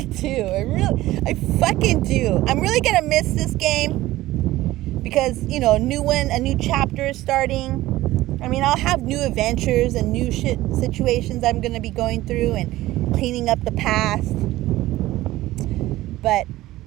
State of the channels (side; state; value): left; quieter; 16.6 dB